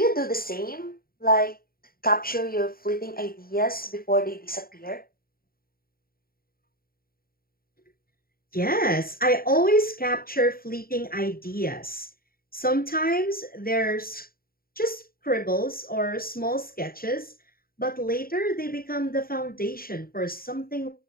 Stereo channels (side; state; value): right; late; 0.43 ms